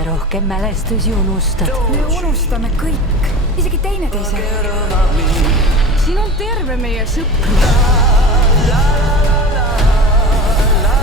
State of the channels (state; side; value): normal; both; correlation 0.34